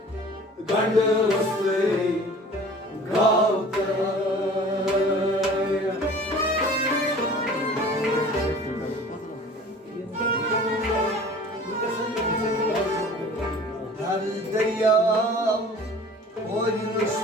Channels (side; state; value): both; normal; correlation 0.45